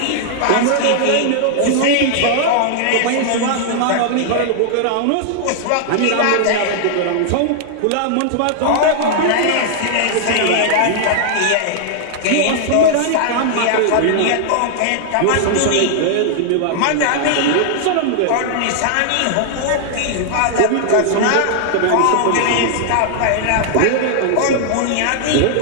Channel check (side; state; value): both; different; correlation -0.01